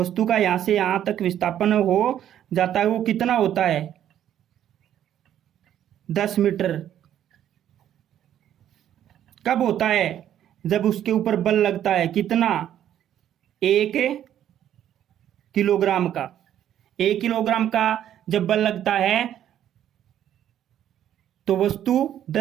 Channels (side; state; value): left; quieter; 10.9 dB